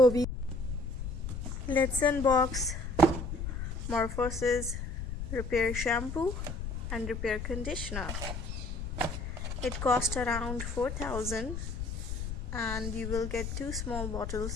Let's unbox Morphosis Repair Shampoo and Repair Conditioner. It cost around 4,000 and you will get two small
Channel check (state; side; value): noise; left; rumble, 5 dB below the sound